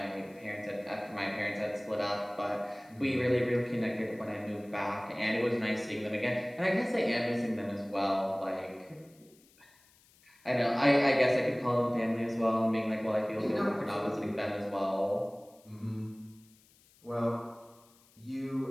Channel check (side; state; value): left; noise; hiss, 29 dB below the sound